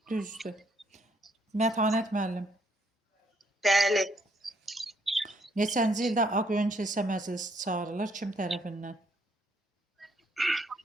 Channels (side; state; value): both; normal; correlation 0.70